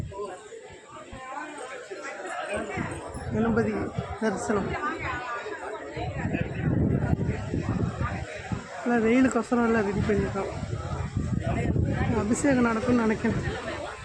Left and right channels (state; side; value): identical; both; correlation 1.00